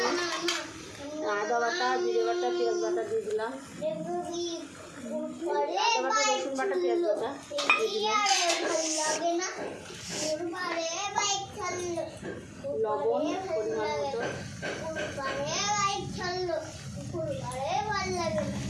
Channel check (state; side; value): identical; both; correlation 1.00